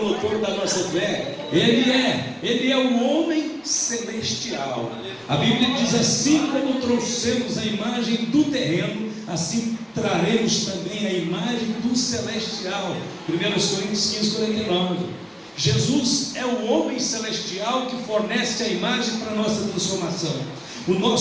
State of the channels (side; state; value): both; identical; correlation 1.00